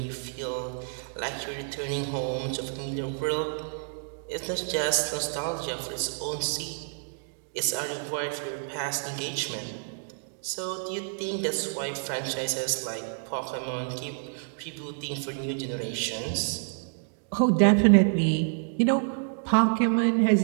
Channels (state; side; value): silent; left; digital silence